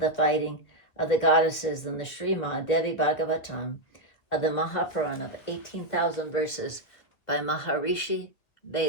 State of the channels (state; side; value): late; right; 2.5 ms